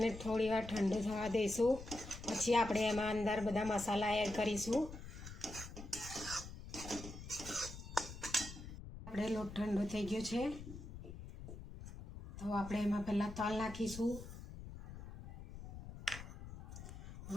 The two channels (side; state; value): left; noise; rumble, 11 dB below the sound